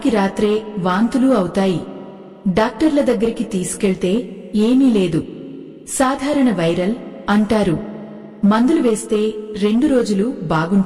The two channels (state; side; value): identical; both; correlation 1.00